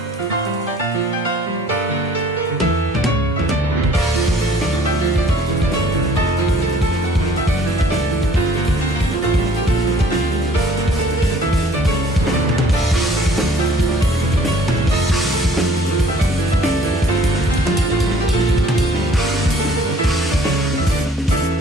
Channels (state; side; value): normal; both; correlation 0.54